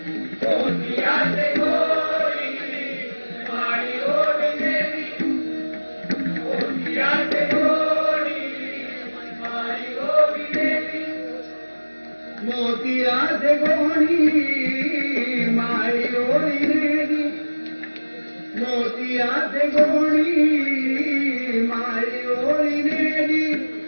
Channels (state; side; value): inverted; both; correlation -1.00